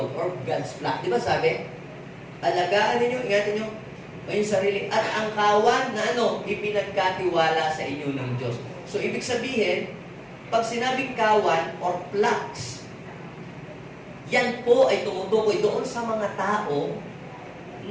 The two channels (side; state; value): both; identical; correlation 1.00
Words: or God's flock. Di ba sabi? Alagaan ninyo, ingatan nyo ang sarili at ang kawan na ipinagkatiwala sa inyo ng Diyos. So ibig sabihin, pag sinabing kawan or flocks, yan po ay tumutukoy doon sa mga tao